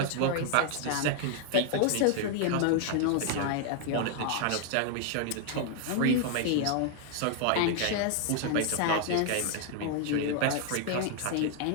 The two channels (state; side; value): different; both; correlation 0.00